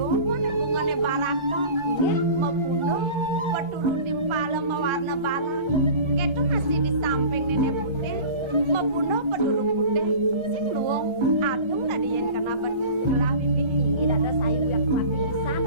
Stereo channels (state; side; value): late; left; 1.3 ms